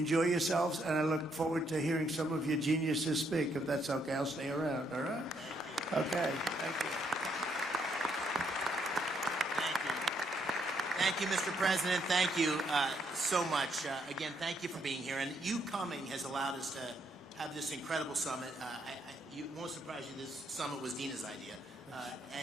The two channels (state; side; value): normal; both; correlation 0.74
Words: yourselves, and I look forward to hearing some of your geniuses speak. If that's okay, I'll stay around, all right? Okay, thank you. Thank you, Mr. President. Thank you so much. Again, thank you for being here. And you coming has allowed us to have this incredible summit. It won't surprise you, this summit was Dina's idea.